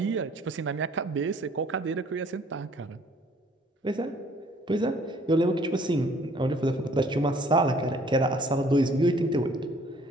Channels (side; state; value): both; normal; correlation 0.58